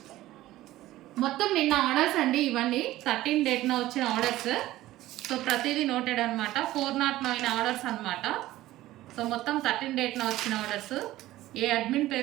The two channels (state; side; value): quieter; left; 15.8 dB